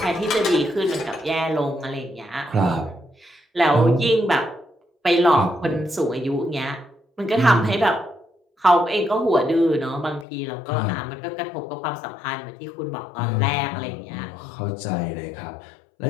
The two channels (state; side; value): drops out; right; at 10.2 s